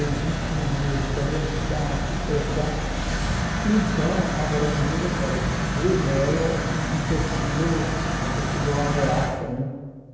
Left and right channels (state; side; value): identical; both; correlation 1.00